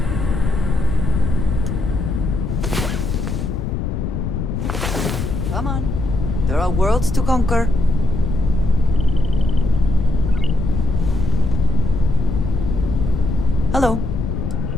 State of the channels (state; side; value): noise; left; rumble, 2 dB below the sound